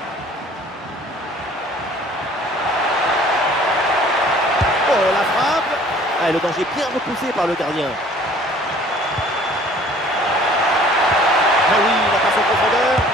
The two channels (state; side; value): normal; both; correlation 0.52